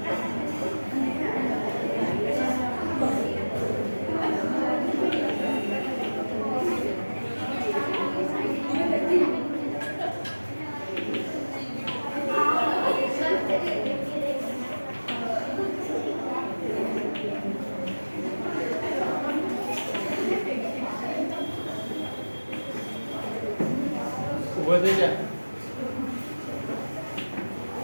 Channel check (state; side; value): inverted; both; correlation -1.00